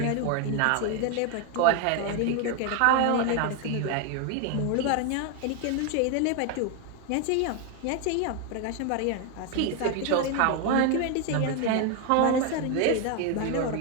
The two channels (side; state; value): both; different; correlation 0.01